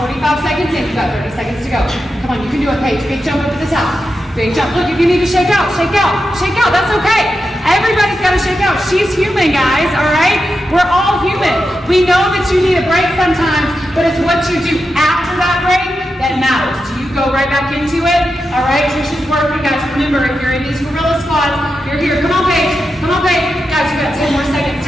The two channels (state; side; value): normal; both; correlation 0.88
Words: we're 45 seconds in. You got 30 seconds to go. Come on, you can do it, Paige. Big jump up at the top. Big jump. Look, if you need to shake out, shake out, shake out. That's okay. Everybody's got to shake out. She's human, guys, all right? We're all human. We know that you need a break sometimes, but it's what you do after that break that matters. Do you go right back into it? All right, Trisha's working, guys. Remember, if you're in these gorilla squats, you're here. Come on, Paige. Come on, Paige. Guys, you got 10 more seconds.